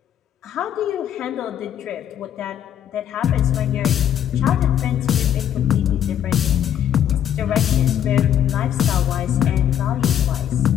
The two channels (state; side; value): quieter; right; 10.1 dB